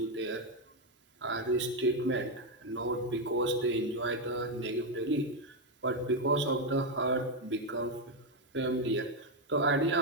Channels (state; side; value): normal; both; correlation 0.05